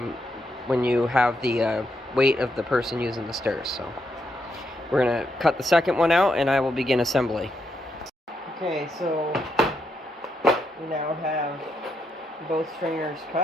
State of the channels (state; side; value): normal; both; correlation 0.80